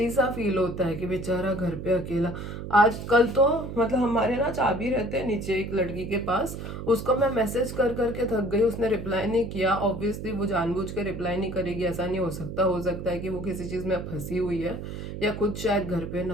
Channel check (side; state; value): right; noise; hum, 8 dB below the sound